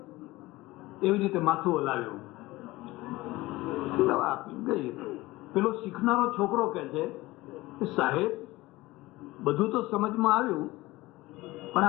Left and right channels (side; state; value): right; quieter; 19.5 dB